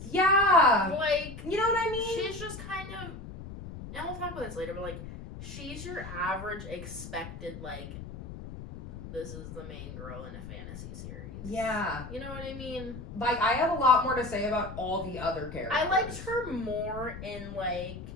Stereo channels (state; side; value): noise; left; rumble, 11 dB below the sound